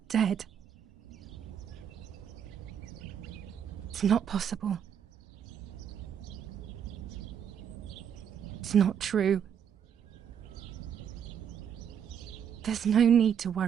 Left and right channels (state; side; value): quieter; left; 8.4 dB